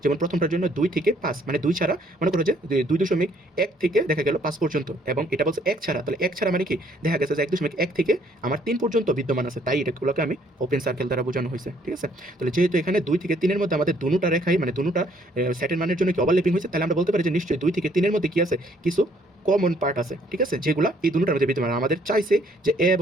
যেমন প্রথমটার জন্য 2 থেকে 5, মানে 2 ছাড়া মনে করো যে 2.1 থেকে দেখা গেল 5 পর্যন্ত, এবং এটা বলছে 1 ছাড়া, তাহলে 1 ছাড়া মানে কি দেখা গেছে যে 1.1 থেকে আমার 3 পর্যন্ত বিদ্যমান আছে, তাই এটাগুলোকে আমি ওপেন সার্কেল দ্বারা বোঝানো হয়েছে, ঠিক আছে। তাহলে যেহেতু এখানে 2 থেকে 3 এর মধ্যে আমাদের দুটোটা রেখাই, মানে দুটোটা সেটের মানের জন্য কি ওভারল্যাপিং হয়েছে, তাহলে আমরা বলতে পারি যে নিশ্চয়ই 2 থেকে 3 এর মধ্যে কি আছে কিছু কমন পার্ট আছে, ঠিক আছে, যেগুলো এই দুটোটার মধ্যে বিদ্যমান। আমাদের চাইছে যে এ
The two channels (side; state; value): both; normal; correlation 0.64